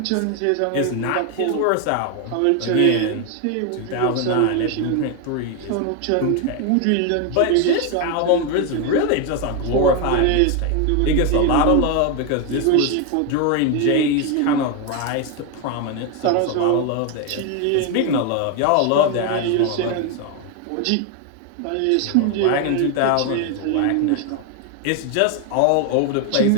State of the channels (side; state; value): both; different; correlation 0.01